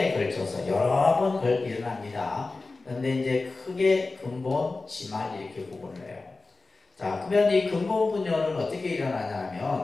걸쳐서 여러 번 일어납니다. 그런데 이제 크게 근본, 지말 이렇게 구분을 해요. 자, 그러면 이 근본 분열은 어떻게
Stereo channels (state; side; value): quieter; right; 3.6 dB